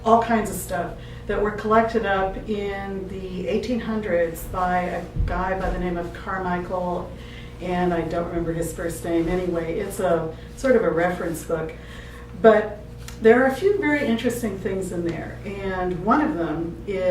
all kinds of stuff that were collected up in the 1800s by a guy by the name of Carmichael, and I don't remember his first name. Anyway, it's a sort of a reference book, but there are a few very interesting things in there, and one of them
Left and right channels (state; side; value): identical; both; correlation 1.00